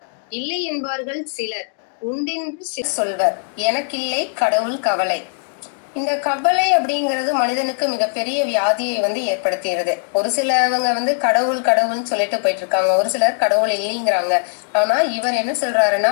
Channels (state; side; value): silent; right; digital silence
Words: இல்லை என்பார்கள் சிலர் உண்டென்று சொல்வர், எனக்கில்லை கடவுள் கவலை. இந்த கவலை அப்படிங்கிறது மனிதனுக்கு மிகப்பெரிய வியாதியை ஏற்படுத்துகிறது. ஒரு சிலவங்க கடவுள் கடவுள்னு சொல்லிட்டு போயிட்டு இருக்காங்க, ஒரு சிலர் கடவுள் இல்லைங்கிறாங்க. ஆனா இவர் என்ன சொல்றாருன்னா,